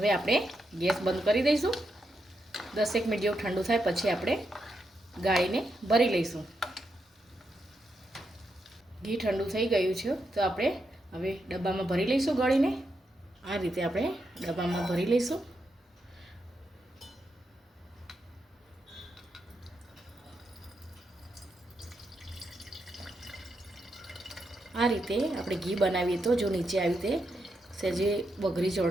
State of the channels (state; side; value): normal; both; correlation 0.84